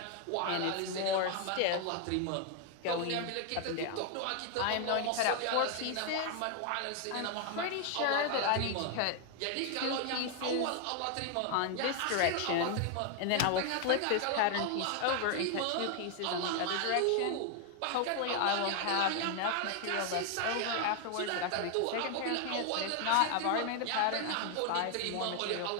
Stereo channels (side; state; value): both; different; correlation 0.01